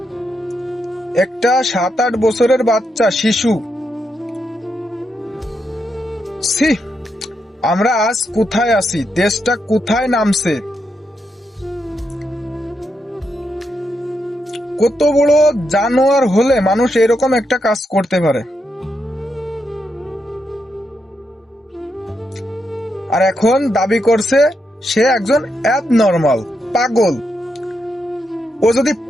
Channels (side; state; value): both; normal; correlation 0.82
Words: একটা 7-8 বছরের বাচ্চা শিশু। আমরা আজ কোথায় আছি? দেশটা কোথায় নামছে? কত বড় জানোয়ার হলে মানুষ এরকম একটা কাজ করতে পারে? আর এখন দাবি করছে সে একজন অ্যাবনর্মাল, পাগল। ও যদি